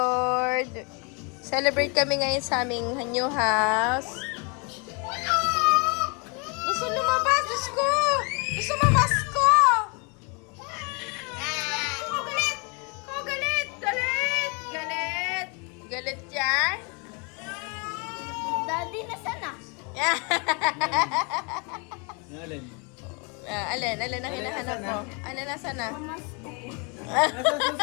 Celebrate kami ngayon sa aming new house. Gusto lumabas, Diyos ko! Gusto mamasko! Oh, galit! Oh, galit! Galit! Galit! Galit yan? Daddy, nasaan na? Alin? Alin ang hinahanap mo? Ano nasa na? Nasa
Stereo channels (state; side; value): quieter; right; 33.3 dB